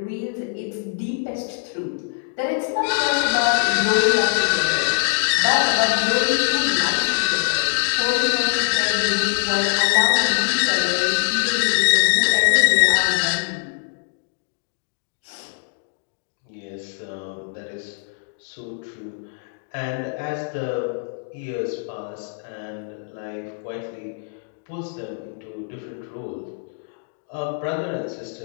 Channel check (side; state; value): right; silent; 64 dB below the other